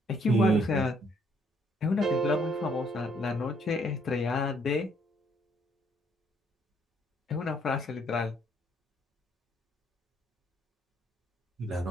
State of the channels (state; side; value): normal; both; correlation 0.67